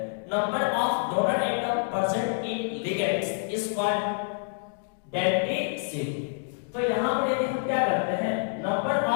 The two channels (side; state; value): right; silent; digital silence